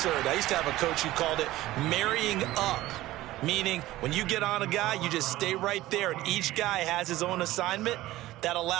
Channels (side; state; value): left; quieter; 16.4 dB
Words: I used to have a coach who called it marrying up. meaning when you get on a guy, you just stay right there, and each guy has his own assignment. That